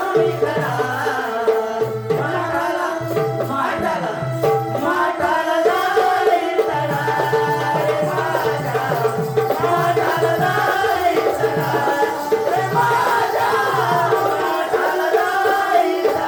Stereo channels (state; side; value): identical; both; correlation 1.00